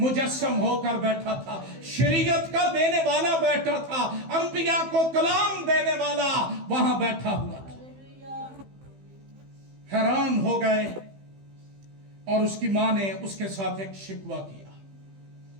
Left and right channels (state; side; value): late; left; 15 ms